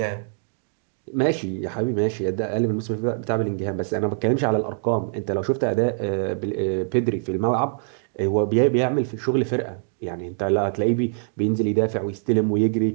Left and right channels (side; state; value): left; silent; digital silence